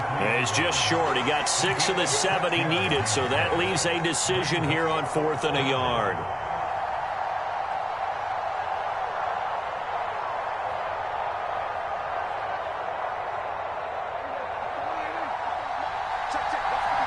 And he's just short. He got 6 of the 7 he needed, so that leaves a decision here on 4th and a yard.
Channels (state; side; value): identical; both; correlation 1.00